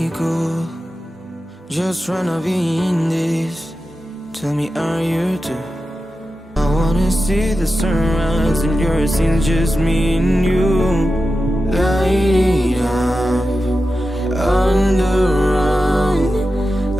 cool, just tryna be in this. Tell me, are you too? I wanna see the sunrise and yours scenes, just me and you. Light it up under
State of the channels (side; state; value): both; normal; correlation 0.92